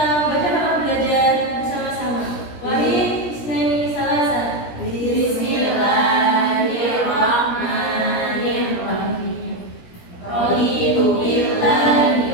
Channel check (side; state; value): right; late; 17 ms